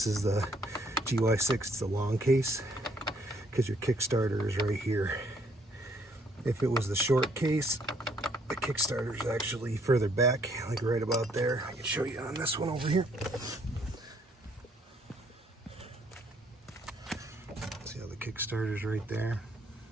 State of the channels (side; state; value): both; normal; correlation 0.67